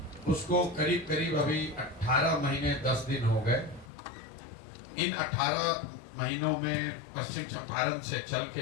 उसको करीब करीब अभी 18 महीने 10 दिन हो गए। इन 18 महीनों में पश्चिम चंपारण से चल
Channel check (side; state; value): right; drops out; at 3.9 s